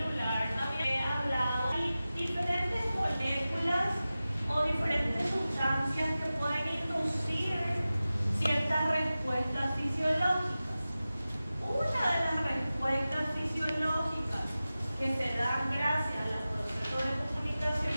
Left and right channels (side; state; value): both; inverted; correlation -0.96